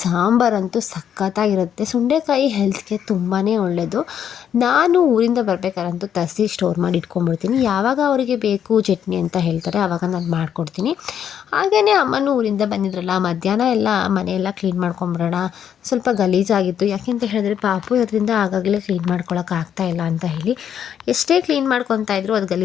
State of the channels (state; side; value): quieter; right; 8.9 dB